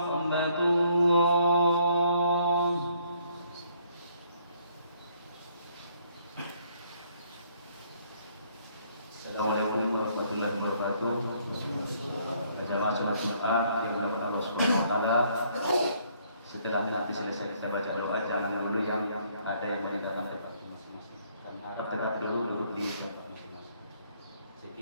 الله. Assalamualaikum warahmatullahi wabarakatuh. Jamaah sholat Jumat yang dimuliakan Allah Subhanahu wa taala. Setelah nanti selesai kita baca doa, jangan dulu yang ada yang meninggalkan tempat masing-masing. Dan harap tetap dulu duduk di tempat masing-masing.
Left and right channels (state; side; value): inverted; both; correlation -0.66